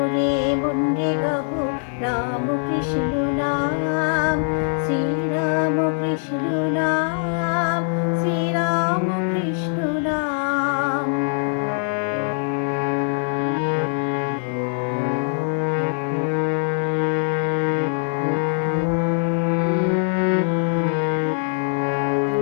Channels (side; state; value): right; silent; 64 dB below the other